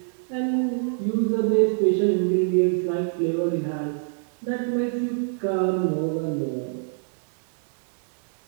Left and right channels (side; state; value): left; silent; 60 dB below the other